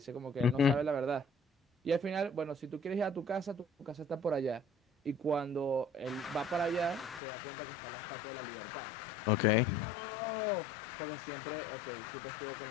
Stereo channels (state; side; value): drops out; right; at 7.2 s